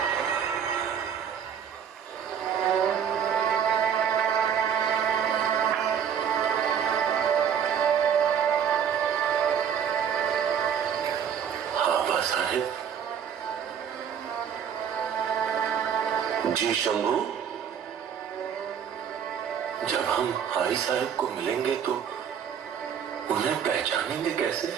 जी शंभू, जब हम हाई साहब को मिलेंगे तो उन्हें पहचानेंगे कैसे?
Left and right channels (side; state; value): left; quieter; 8.2 dB